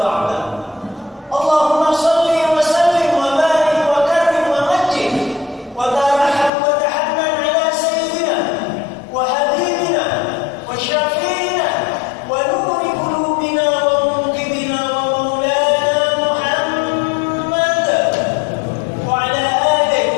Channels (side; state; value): right; drops out; at 6.5 s